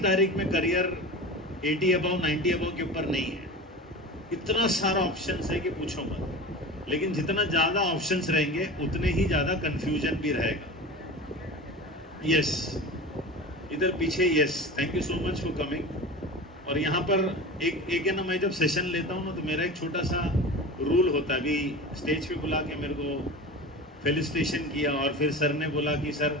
तारीख में करियर 80 अबव 90 अबव के ऊपर नहीं है। इतना सारा ऑप्शंस है कि पूछो मत। लेकिन जितना ज़्यादा ऑप्शंस रहेंगे उतने ही ज़्यादा कंफ्यूजन भी रहेगा। यस, इधर पीछे, yes, thank you so much for coming. और यहाँ पर एक है ना, मैं जब सेशन लेता हूँ ना तो मेरा एक छोटा सा रूल होता है। अभी स्टेज पे बुला के मेरे को फेलिसिटेशन किया, और फिर सर ने बोला कि sir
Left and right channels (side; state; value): both; normal; correlation 0.31